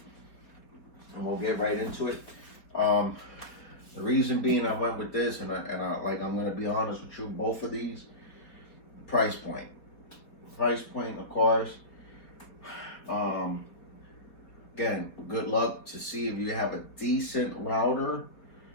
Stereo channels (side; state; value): right; late; 4.4 ms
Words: And we'll get right into it. The reason being I went with this, and I'm going to be honest with you, both of these, price point. Price point, of course. Again, good luck to see if you have a decent router